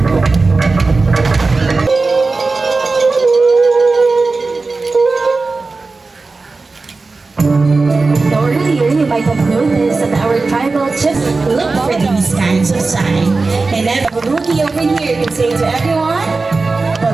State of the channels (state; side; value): quieter; left; 3.8 dB